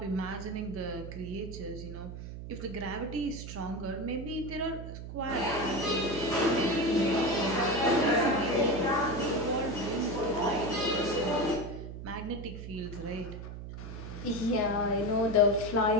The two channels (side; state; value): right; noise; hum, 9 dB below the sound